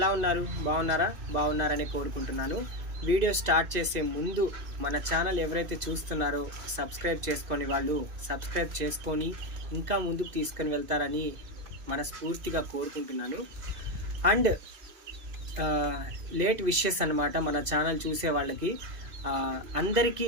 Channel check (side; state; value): left; late; 2.5 ms